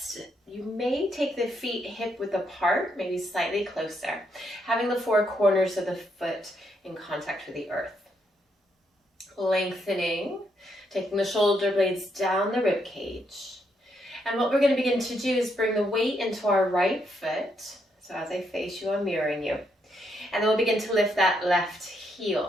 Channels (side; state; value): both; normal; correlation 0.77